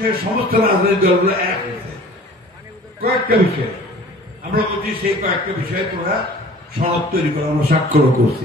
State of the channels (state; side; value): normal; both; correlation 0.47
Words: সমস্ত রাজনৈতিক দলগুলো এক হয়েছে। কয়েকটা বিষয় আমরা বলছি, সেই কয়েকটা বিষয়ে তোমরা সনদ তৈরি করে আমরা স্বাক্ষরও